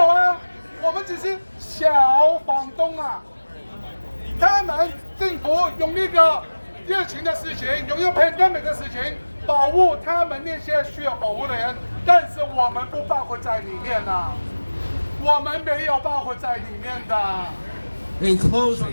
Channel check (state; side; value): inverted; both; correlation -1.00